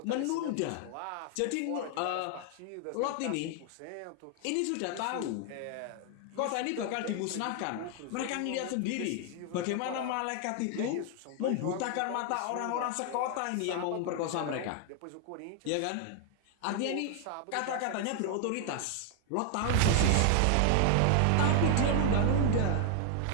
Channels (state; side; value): different; both; correlation 0.00